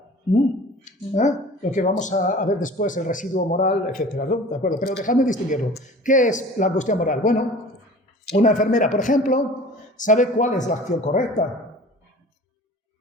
lo que vamos a ver después, el residuo moral, etc., ¿no? ¿De acuerdo? Pero dejadme distinguirlo. ¿Qué es la angustia moral? Bueno, una enfermera, por ejemplo, sabe cuál es la acción correcta,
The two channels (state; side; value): normal; both; correlation 0.43